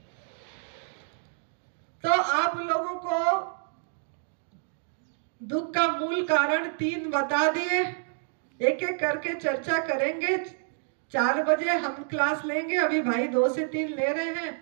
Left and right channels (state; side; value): silent; left; 59 dB below the other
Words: तो आप लोगों को दुख का मूल कारण 3 बता दिए, एक एक करके चर्चा करेंगे। 4 बजे हम क्लास लेंगे, अभी भाई 2 से 3 ले रहे हैं।